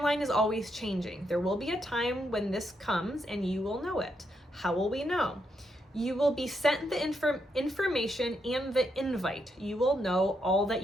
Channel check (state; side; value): normal; both; correlation 0.80